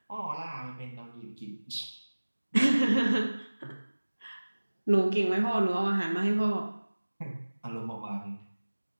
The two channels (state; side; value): inverted; both; correlation -1.00